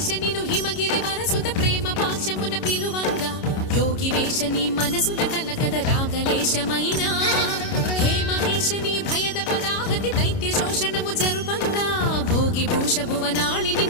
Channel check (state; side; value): late; right; 29 ms